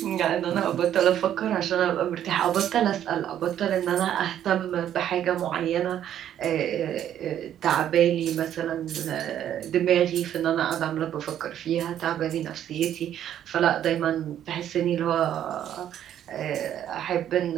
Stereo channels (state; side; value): quieter; left; 10.7 dB